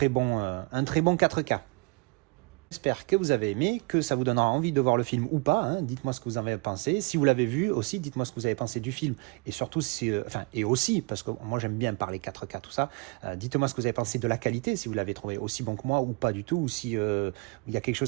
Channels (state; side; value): quieter; left; 30.5 dB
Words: bon 4K. J'espère que vous avez aimé, que ça vous donnera envie de voir le film ou pas. Hein. Dites-moi ce que vous en avez pensé. Si vous l'avez vu aussi, dites-moi ce que vous avez pensé du film. Et surtout, et aussi, parce que moi j'aime bien parler 4K, tout ça, dites-moi ce que vous avez pensé de la qualité, si vous l'avez trouvé aussi bon que moi ou pas du tout, ou si il y a quelque